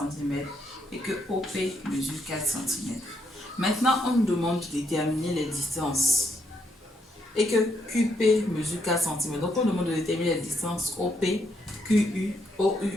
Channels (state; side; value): normal; both; correlation 0.76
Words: et que OP mesure 4 cm. Maintenant, on nous demande de déterminer les distances et que QP mesure 4 cm. Donc, on demande de déterminer les distances OP, QU, OU